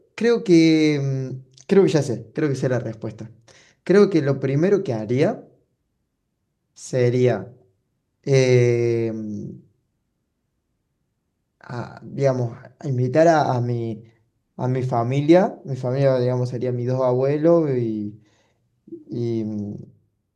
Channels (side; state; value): both; identical; correlation 1.00